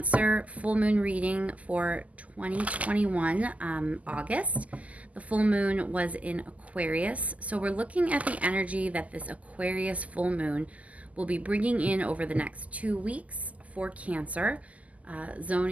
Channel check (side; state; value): left; late; 0.072 ms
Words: full moon reading for 2021, August. The full moon was in Aquarius, so we're looking at the energy that this Aquarius full moon will be bringing in over the next 2 weeks for Cancer,